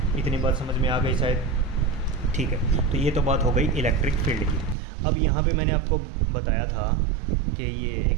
इतनी बात समझ में आ गई शायद। ठीक है, तो ये तो बात हो गई इलेक्ट्रिक फील्ड की। अब यहाँ पे मैंने आपको बताया था कि ये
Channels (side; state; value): left; drops out; at 4.8 s